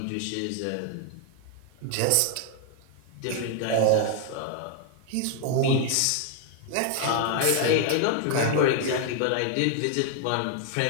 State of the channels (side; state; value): both; different; correlation 0.00